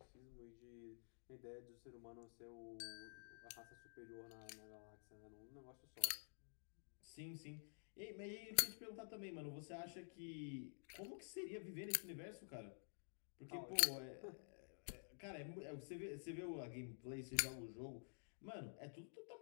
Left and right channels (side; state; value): right; silent; digital silence